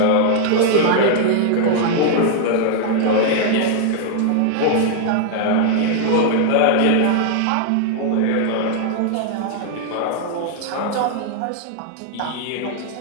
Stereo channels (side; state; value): both; different; correlation 0.00